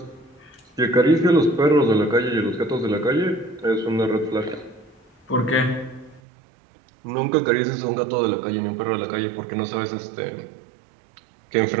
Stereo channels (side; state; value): left; drops out; at 6.2 s